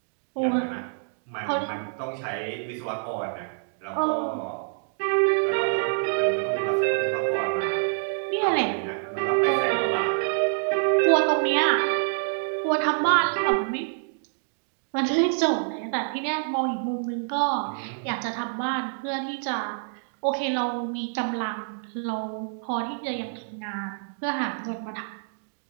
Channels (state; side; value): silent; left; digital silence